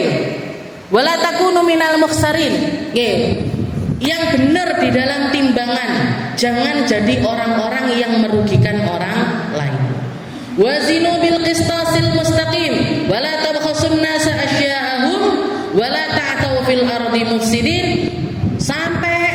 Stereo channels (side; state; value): both; identical; correlation 1.00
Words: wa la takunu minal mukhsarin. Yang benar di dalam timbangan, jangan jadi orang-orang yang merugikan orang lain. Wazinu bil qistasil mustaqim wa la tabkhasun nasa asya'ahum wa la ta'tau fil ardi mufsidin,